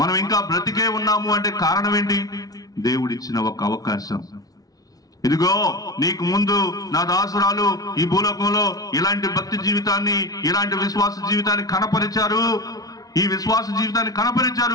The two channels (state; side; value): late; right; 0.18 ms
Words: ఇంకా బ్రతికే ఉన్నాము అంటే కారణం ఏంటి? దేవుడిచ్చిన ఒక అవకాశం. ఇదిగో నీకు ముందు నా దాసురాలు ఈ భూలోకంలో ఇలాంటి భక్తి జీవితాన్ని, ఇలాంటి విశ్వాస జీవితాన్ని కనపరిచారు, ఈ విశ్వాస జీవితాన్ని